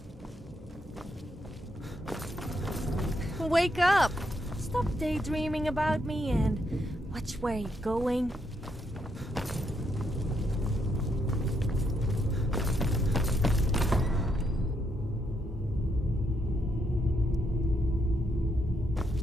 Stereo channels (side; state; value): both; normal; correlation 0.77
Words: wake up! Stop daydreaming about me and watch where you're going.